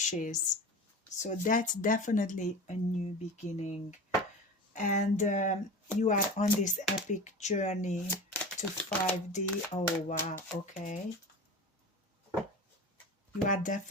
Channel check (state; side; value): normal; both; correlation 0.32